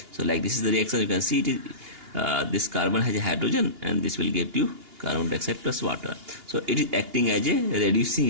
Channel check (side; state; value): left; late; 2.8 ms